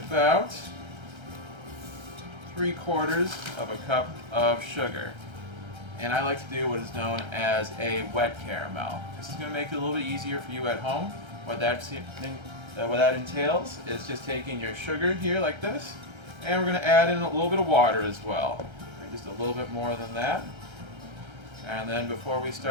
3/4 of a cup of sugar. And I like to do what is known as a wet caramel. This is going to make it a little bit easier for you at home. What that entails is just taking your sugar here like this, and we're going to add in a little bit of water as well. Just a little bit more than that. And then before we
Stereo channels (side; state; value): left; late; 1.3 ms